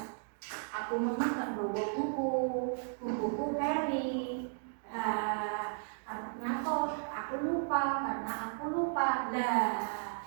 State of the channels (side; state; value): left; silent; digital silence